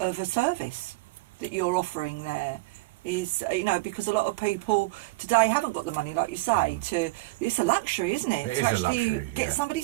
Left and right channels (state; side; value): quieter; left; 21.8 dB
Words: service that you're offering there. Is, you know, because a lot of people today haven't got the money, like you say, it's a luxury, isn't it? It to is a actually luxury, get yeah. somebody